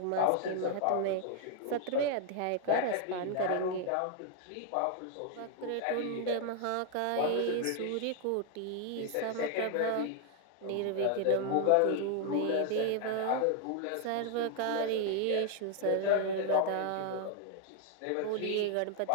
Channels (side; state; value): both; different; correlation 0.00